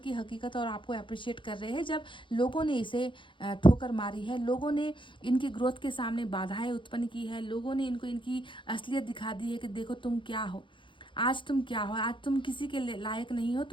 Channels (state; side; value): late; right; 0.24 ms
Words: हकीकत और आपको अप्रिशिएट कर रहे हैं, जब लोगों ने इसे ठोकर मारी है, लोगों ने इनकी ग्रोथ के सामने बाधाएं उत्पन्न की है, लोगों ने इनको इनकी असलियत दिखा दी है कि देखो तुम क्या हो, आज तुम क्या हो, आज तुम किसी के लायक नहीं हो,